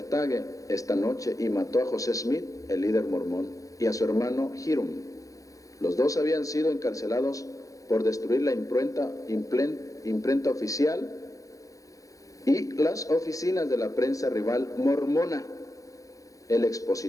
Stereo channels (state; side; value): late; right; 0.16 ms